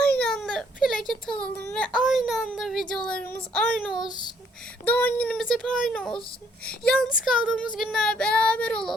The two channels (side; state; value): both; normal; correlation 0.66